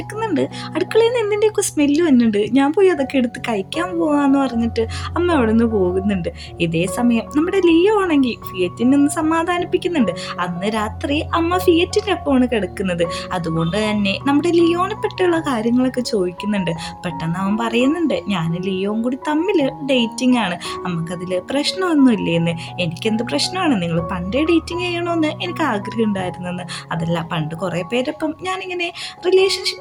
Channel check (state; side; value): identical; both; correlation 1.00